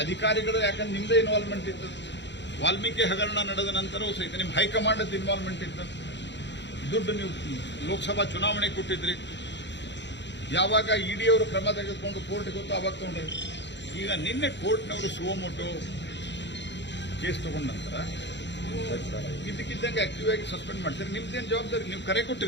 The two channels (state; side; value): late; right; 0.52 ms